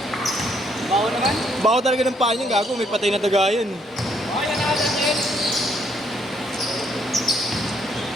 Bao naman? Bako talaga ng paa niya, gago. May patay na daga yun. Oh, yan na natin.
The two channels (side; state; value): both; normal; correlation 0.70